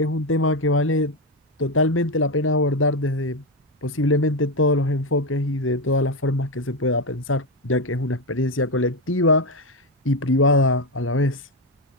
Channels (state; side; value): normal; both; correlation 0.09